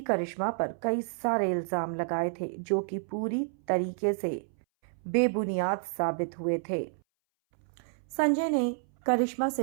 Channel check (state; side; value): silent; left; 58 dB below the other